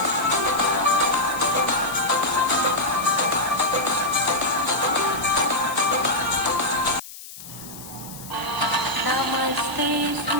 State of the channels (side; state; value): left; noise; hiss, 15 dB below the sound